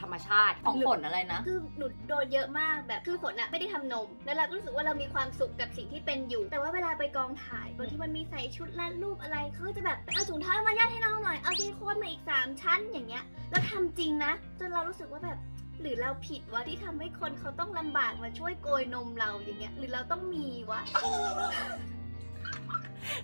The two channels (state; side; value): inverted; both; correlation -1.00